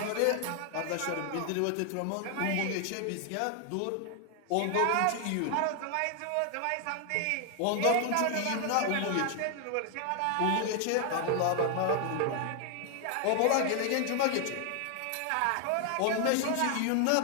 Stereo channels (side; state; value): both; different; correlation 0.00